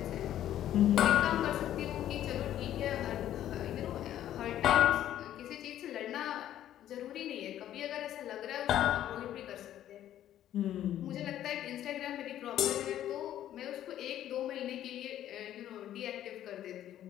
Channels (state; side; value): quieter; right; 11.8 dB